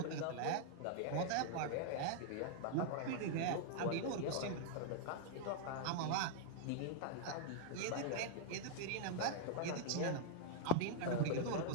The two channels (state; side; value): different; both; correlation -0.01